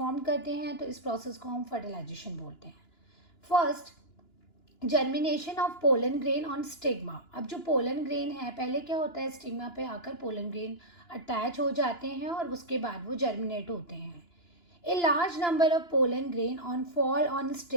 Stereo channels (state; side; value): late; right; 2.9 ms